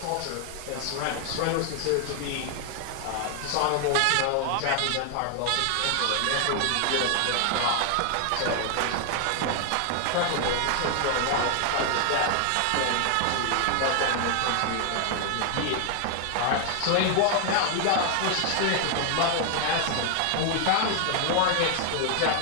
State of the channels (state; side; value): different; both; correlation 0.00